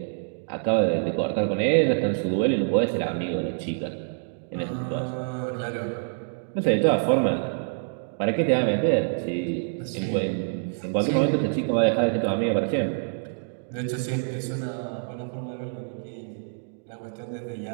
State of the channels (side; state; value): left; silent; digital silence